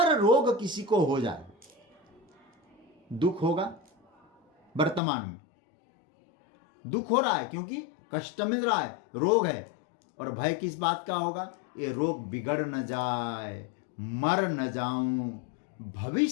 रोग किसी को हो जाए, दुख होगा वर्तमान में। दुख हो रहा है क्योंकि कष्ट मिल रहा है, रोग है। और भय किस बात का होगा? ये रोग बिगड़ न जाए, मर न जाऊं।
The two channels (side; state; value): right; drops out; at 5.0 s